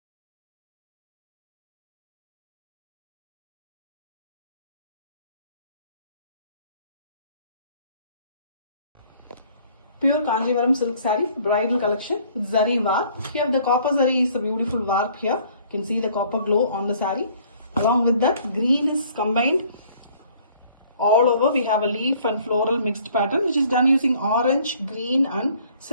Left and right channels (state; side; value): inverted; both; correlation -0.58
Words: Pure Kanjivaram silk saree, bridal collection with zari warp. Here the copper zari is a beautiful warp here. You can see the copper glow on the saree. Along with that, green is combined. All over we have a leaf and floral mixed pattern, which is done using orange, green and